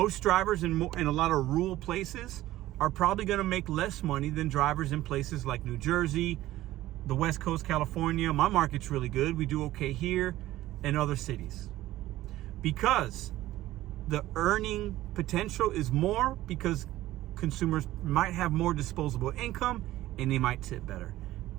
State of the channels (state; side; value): quieter; left; 15.5 dB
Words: drivers in a lot of rural places are probably going to make less money than drivers in places like New Jersey, the West Coast, California. My market's really good. We do okay here and other cities. Because the earning potential is more because consumers might have more disposable income and they might tip better.